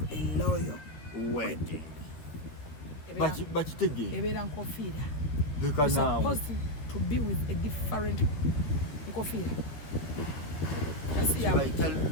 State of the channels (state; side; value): late; right; 13 ms